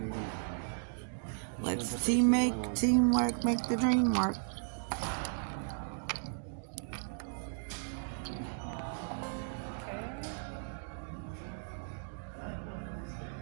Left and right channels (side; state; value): left; silent; digital silence